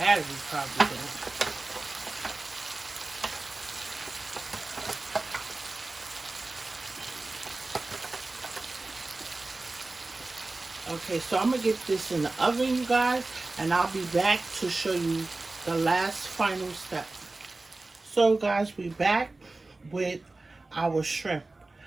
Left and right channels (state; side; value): quieter; left; 3.2 dB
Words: battery probably don't. Okay, so I'm going to get this in the oven, you guys, and I'll be back to show you the last final step. So, guys, we back with our shrimp.